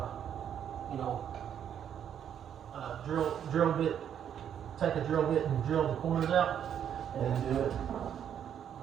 drill bit, take a drill bit and drill the corners out, and then do it.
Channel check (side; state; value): left; quieter; 9.1 dB